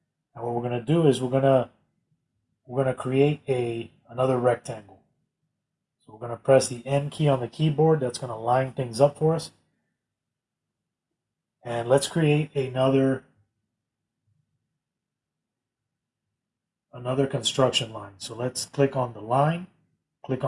And what we're going to do is we're going to create another rectangle. So we're going to press the N key on the keyboard. That's going to line things up for us. And let's create another construction line. So let's click on the line, click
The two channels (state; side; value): identical; both; correlation 1.00